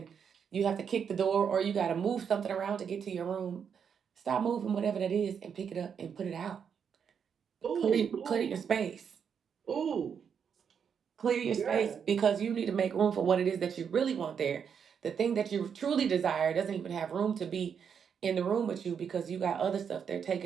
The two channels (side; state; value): left; quieter; 7.2 dB